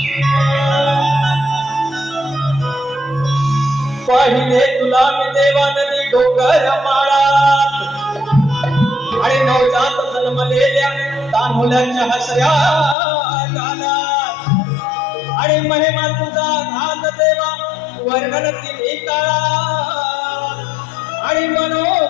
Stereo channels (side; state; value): right; drops out; at 13.0 s